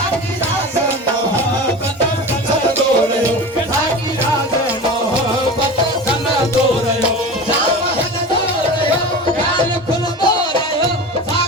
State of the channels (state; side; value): normal; both; correlation 0.31